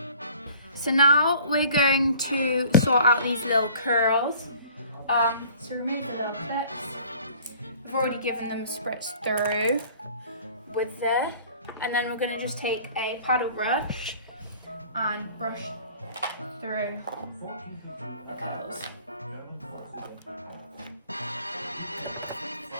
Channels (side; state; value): both; inverted; correlation -0.50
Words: So now we're going to sort out these little curls. So remove the little clips. I've already given them a spritz through with this. And then we're going to just take a paddle brush and brush through the curls.